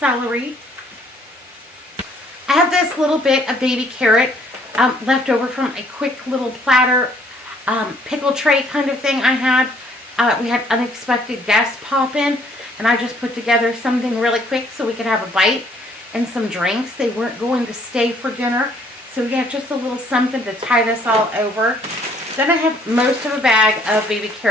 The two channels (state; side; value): normal; both; correlation 0.62